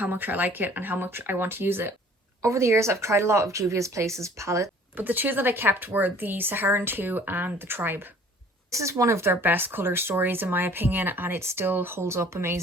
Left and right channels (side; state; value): both; normal; correlation 0.53